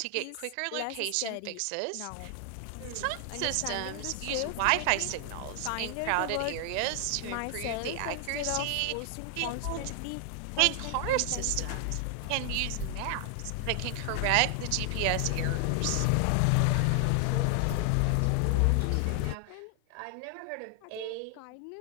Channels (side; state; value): both; different; correlation 0.00